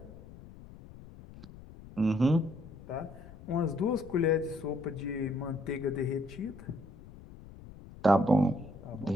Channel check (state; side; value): noise; left; rumble, 17 dB below the sound